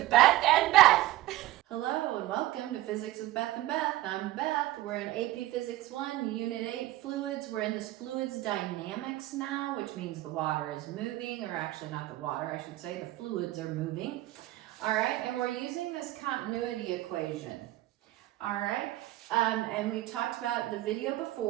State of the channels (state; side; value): quieter; left; 16.6 dB